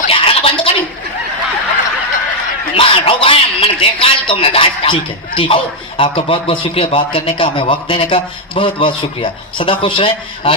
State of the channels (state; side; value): normal; both; correlation 0.01